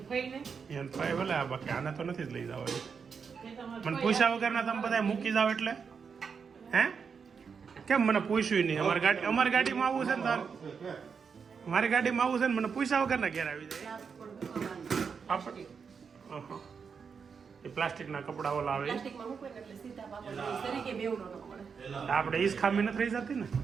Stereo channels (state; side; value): quieter; left; 6.0 dB